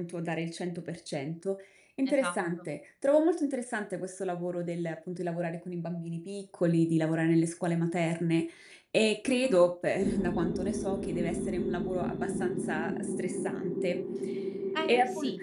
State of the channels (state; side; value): identical; both; correlation 1.00